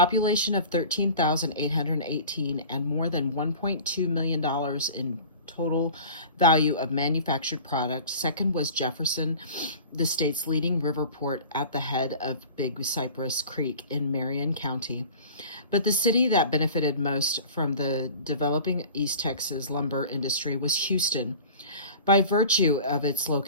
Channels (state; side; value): inverted; both; correlation -0.41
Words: of 13,818 and more than $1.2 million in total value of manufactured product. Second was Jefferson, the state's leading river port at the head of Big Cypress Creek in Marion County. But the city that benefited most from the developing East Texas lumber industry was Houston. By virtue of its